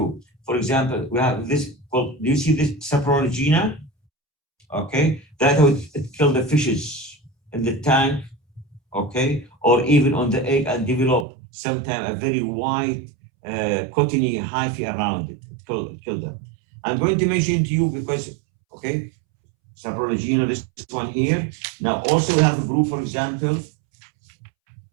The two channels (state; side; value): drops out; left; at 11.2 s